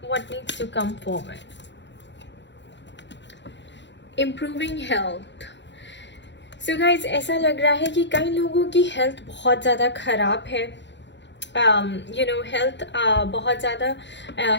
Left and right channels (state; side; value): late; right; 0.52 ms